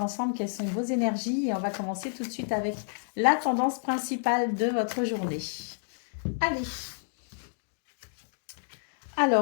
ensemble quelles sont vos énergies et on va commencer tout de suite avec la tendance principale de votre journée. Allez.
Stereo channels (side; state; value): right; silent; digital silence